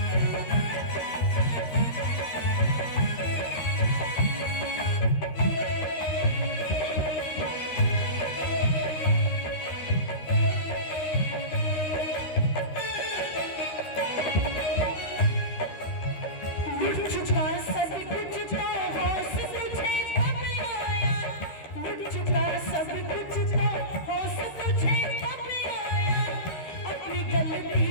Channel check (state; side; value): late; right; 13 ms